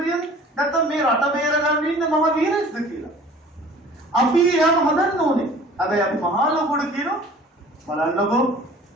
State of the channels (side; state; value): both; normal; correlation 0.47